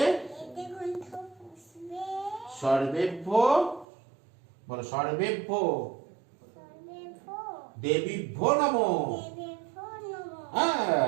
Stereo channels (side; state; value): left; drops out; at 3.9 s